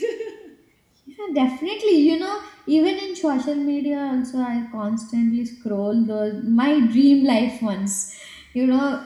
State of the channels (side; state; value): both; identical; correlation 1.00